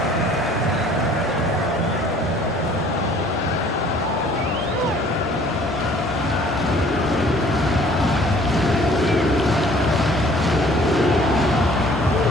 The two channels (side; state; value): right; noise; rumble, 22 dB below the sound